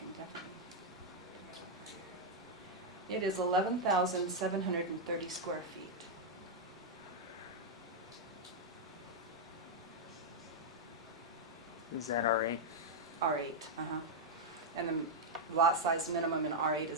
definitely bring it over here. It is 11,730 square feet. Is that R8? R8, and the lot size minimum in R8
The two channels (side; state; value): both; normal; correlation -0.03